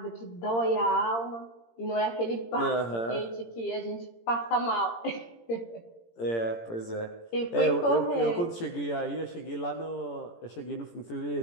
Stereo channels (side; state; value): right; late; 17 ms